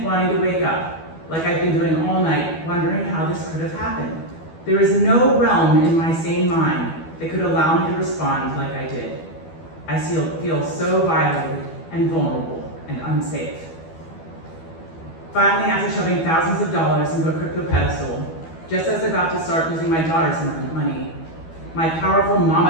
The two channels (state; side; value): late; right; 12 ms